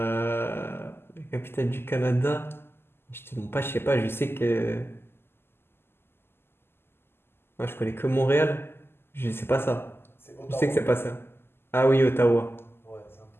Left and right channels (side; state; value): right; late; 0.11 ms